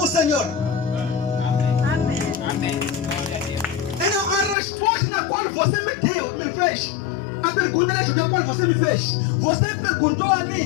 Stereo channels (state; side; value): drops out; right; at 4.5 s